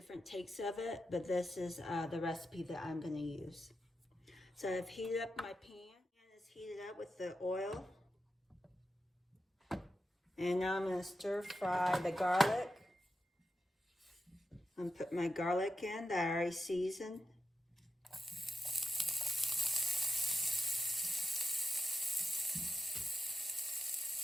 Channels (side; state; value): both; normal; correlation 0.89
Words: takes of it, but this is the recipe that I'm going to use. So I've heated up my pan, and it's heated up with the oil. And now I'm going to stir fry the garlic. I'm going to put my garlic in that I already seasoned.